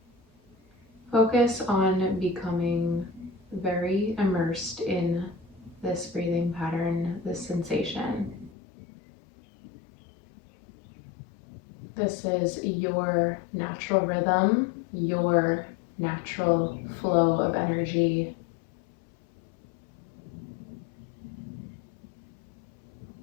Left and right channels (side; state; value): right; drops out; at 8.5 s